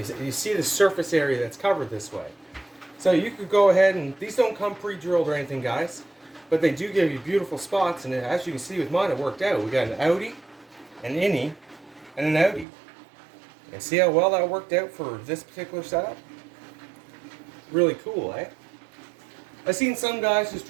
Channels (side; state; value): left; drops out; at 12.7 s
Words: you see the surface area that's covered this way. So you could go ahead and, these don't come pre-drilled or anything, guys, but they do give you beautiful spots, and as you can see with mine, it worked out. We got an outie, an innie, and an outie. And see how well that worked out for this particular setup? Really cool, eh? I've seen some guys just